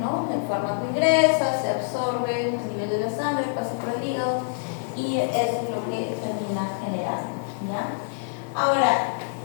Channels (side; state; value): right; silent; digital silence